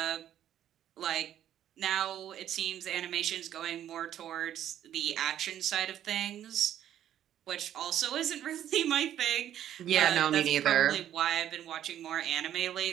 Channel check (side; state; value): left; quieter; 11.0 dB